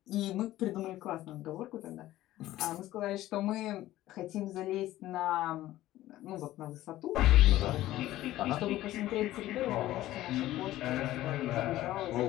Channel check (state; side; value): quieter; right; 15.1 dB